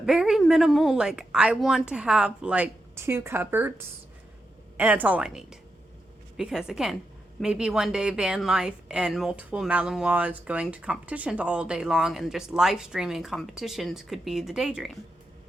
very minimal, like, I want to have, like, 2 cupboards, and that's all I need. Because, again, maybe one day van life and multiple Malinois going to competitions all day long and just live streaming competitions could be the daydream.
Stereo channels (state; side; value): normal; both; correlation 0.86